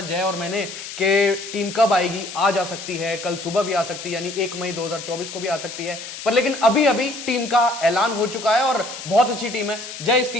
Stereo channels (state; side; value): noise; left; hiss, 10 dB below the sound